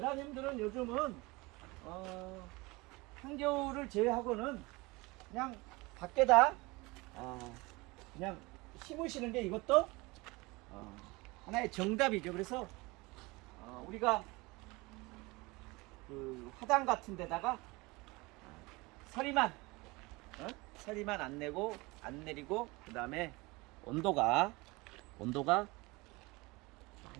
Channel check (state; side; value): quieter; left; 23.8 dB